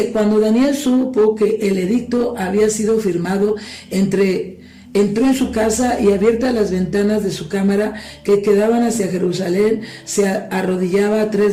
cuando Daniel supo que el edicto había sido firmado, entró en su casa y abiertas las ventanas de su cámara que quedaban hacia Jerusalén, se arrodillaba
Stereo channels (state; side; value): identical; both; correlation 1.00